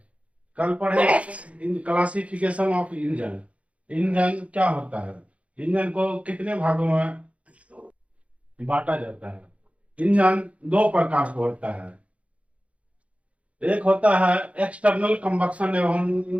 कल पढ़े क्लासिफिकेशन ऑफ इंजन। इंजन क्या होता है, इंजन को कितने भागों में बांटा जाता है। इंजन दो प्रकार का होता है। एक होता है एक्सटर्नल कंबक्शन एवं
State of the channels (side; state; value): left; late; 0.064 ms